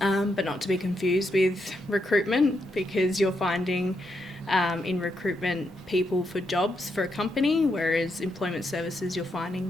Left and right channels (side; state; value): both; normal; correlation 0.81